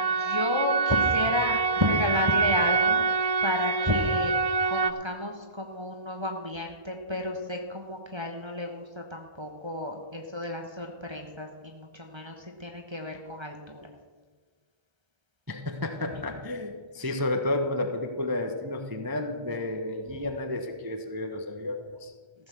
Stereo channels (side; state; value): left; late; 1.0 ms